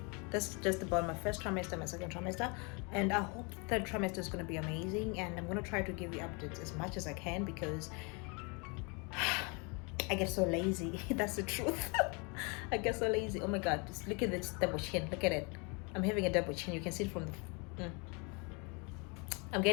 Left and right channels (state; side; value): quieter; right; 32.0 dB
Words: That's just about my first trimester, my second trimester, and I hope third trimester is going to be amazing. And I'm going to try to give you updates as much as I can, because I get so lazy. That's the truth. I get so lazy. Oh my god, just look at this double chin. Look at it. I'm having a double chin. You can see it from the I'm